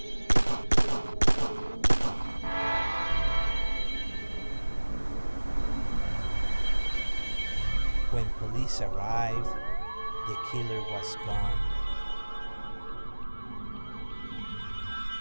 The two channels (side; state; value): both; inverted; correlation -1.00